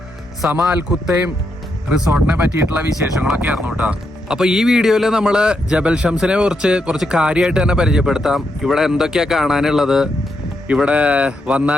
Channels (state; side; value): normal; both; correlation 0.81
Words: സമ അൽ ഖുത്തൈം റിസോർട്ടിനെ പറ്റിയിട്ടുള്ള വിശേഷങ്ങളൊക്കെ ആയിരുന്നു കേട്ടോ. അപ്പോൾ ഈ വീഡിയോയിൽ നമ്മൾ ജബൽ ഷംസിനെ കുറിച്ച് കുറച്ച് കാര്യമായിട്ട് തന്നെ പരിചയപ്പെടുത്താം. ഇവിടെ എന്തൊക്കെയാണ് കാണാനുള്ളത്, ഇവിടെ